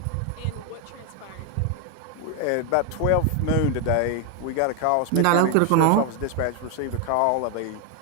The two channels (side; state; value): both; different; correlation 0.01